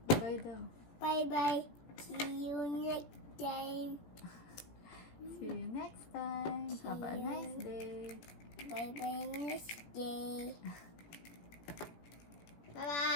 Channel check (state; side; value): late; right; 18 ms